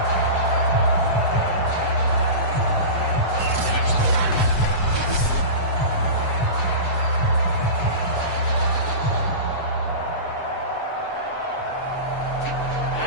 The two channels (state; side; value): late; right; 7.8 ms